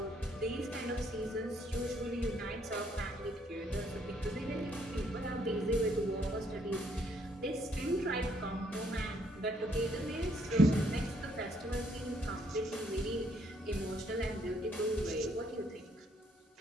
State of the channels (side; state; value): both; normal; correlation 0.69